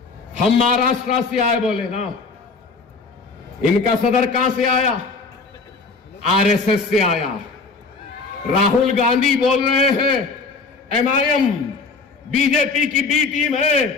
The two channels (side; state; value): right; quieter; 4.2 dB